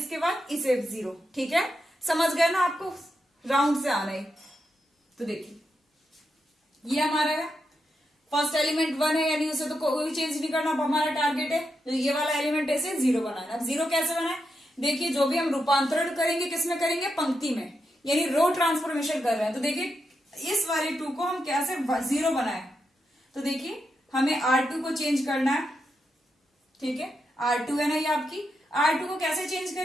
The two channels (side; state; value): both; normal; correlation 0.85